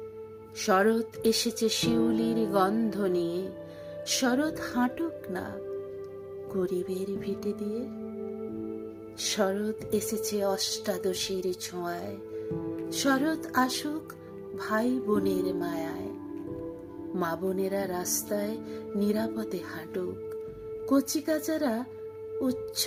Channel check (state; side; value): identical; both; correlation 1.00